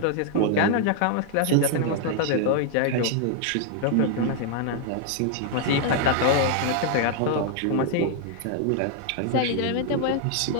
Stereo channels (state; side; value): different; both; correlation 0.00